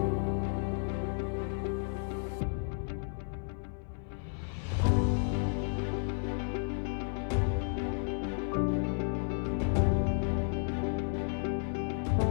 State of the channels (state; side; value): silent; right; 56 dB below the other